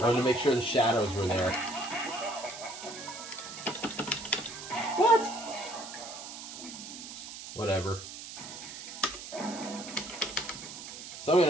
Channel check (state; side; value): noise; right; hiss, 11 dB below the sound